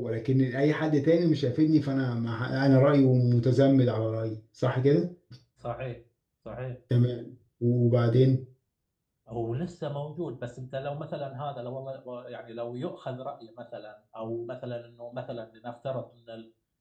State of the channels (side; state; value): both; identical; correlation 1.00